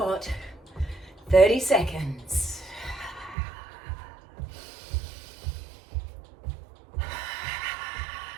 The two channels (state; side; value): drops out; left; at 3.4 s